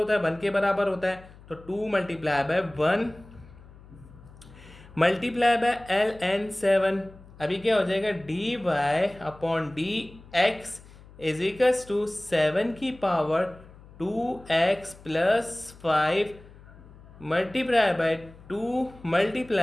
है, 1 के बराबर होता है। तो 2 multiply by 1 multiply by ln 7। अभी क्या हो जाएगा, D Y upon D x is equals to 7 की power 2x plus 5 multiply by 2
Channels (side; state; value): left; noise; hum, 21 dB below the sound